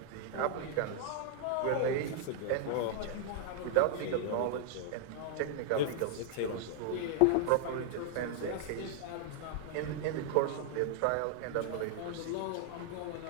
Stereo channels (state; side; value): different; both; correlation 0.00